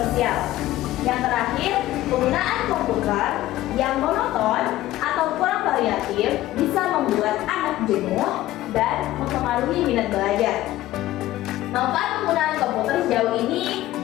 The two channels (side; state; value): right; quieter; 15.4 dB